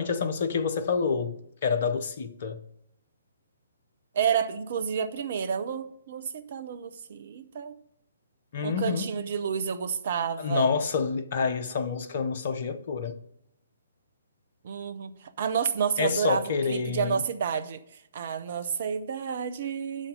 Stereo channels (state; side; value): inverted; both; correlation -0.59